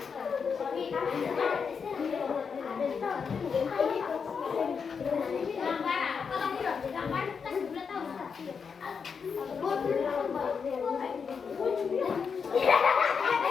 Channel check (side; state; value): right; quieter; 6.0 dB